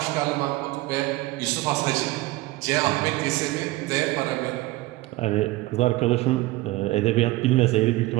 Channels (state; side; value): quieter; left; 19.2 dB